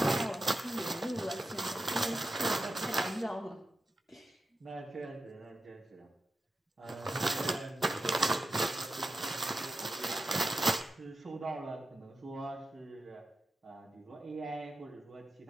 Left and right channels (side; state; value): both; normal; correlation 0.89